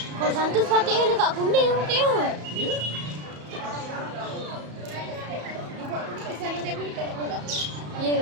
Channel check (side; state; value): left; late; 34 ms